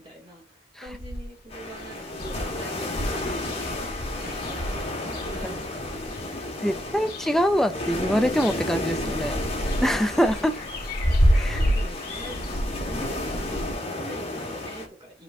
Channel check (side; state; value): both; normal; correlation 0.80